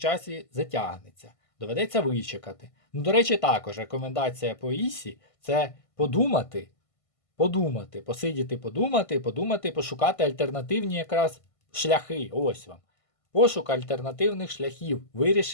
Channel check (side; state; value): right; late; 1.5 ms